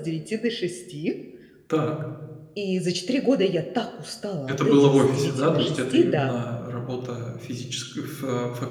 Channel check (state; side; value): identical; both; correlation 1.00